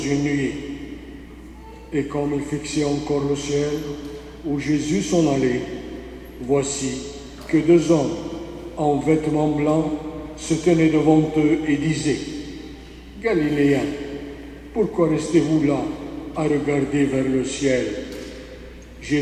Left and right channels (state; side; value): identical; both; correlation 1.00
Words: nuée. Et comme ils fixaient encore le ciel, où Jésus s'en allait, voici que 2 hommes en vêtements blancs se tenaient devant eux et disaient, « Galiléens, pourquoi restez-vous là à regarder vers le ciel?